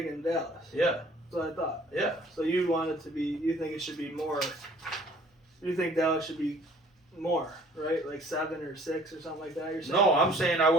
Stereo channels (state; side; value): normal; both; correlation 0.54